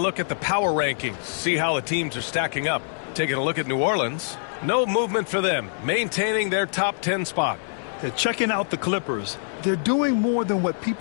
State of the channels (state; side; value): silent; right; digital silence